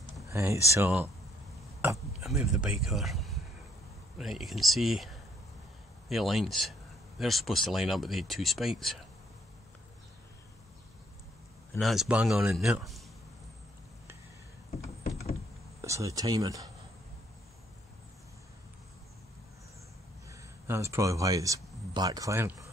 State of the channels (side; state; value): both; normal; correlation 0.68